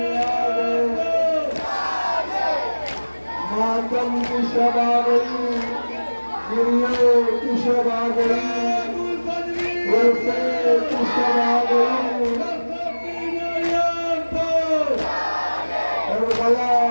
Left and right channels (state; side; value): inverted; both; correlation -1.00